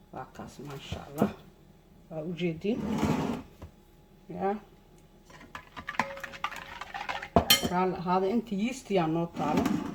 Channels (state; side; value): identical; both; correlation 1.00